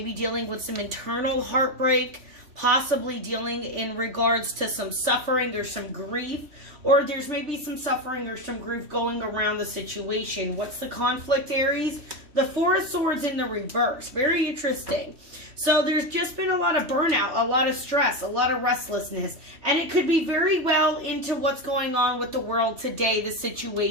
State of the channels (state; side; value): late; left; 3.4 ms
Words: dealing with some internal heartbreak, possibly dealing in regards to some suffering or some grief, or there's maybe some suffering or some grief going around the situation. What's the conflict, Aries? The Four of Swords in the reverse. Very interesting. So there's just been a lot of burnout, a lot of stress, a lot of restlessness, and it could be very well into what's going on with the world today, the